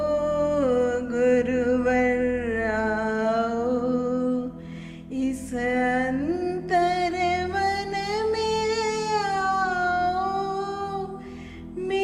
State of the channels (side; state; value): both; identical; correlation 1.00